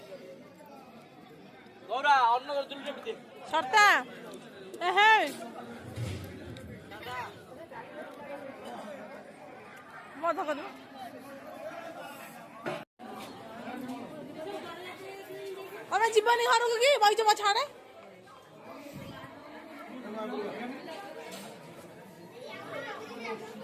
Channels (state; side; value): identical; both; correlation 1.00